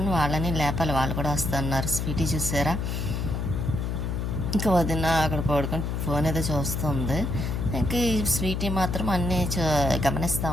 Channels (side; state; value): left; noise; hum, 1 dB below the sound